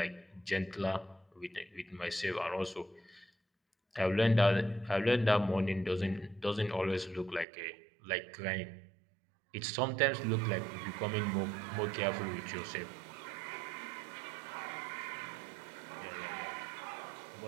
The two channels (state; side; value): drops out; left; at 7.5 s